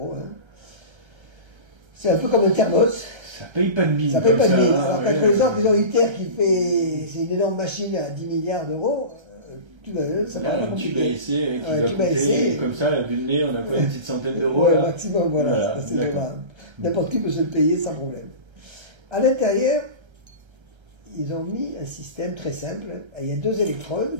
Hein. C'est un peu comme un thermos. Ça paye pas de mine. Ça paye pas de mine. Alors, quand par exemple, ils ont ITER qui fait. C'est une énorme machine à 10 milliards d'euros. Ça paraît un tube à essai qui doit coûter, comme ça, vu le nez, on a quoi, une petite centaine d'euros. Ouais, maximum, voilà. N'importe qui peut se le payer sans problème. À l'intérieur, ils ont mis un système très simple. Il y a deux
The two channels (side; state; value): left; late; 1.3 ms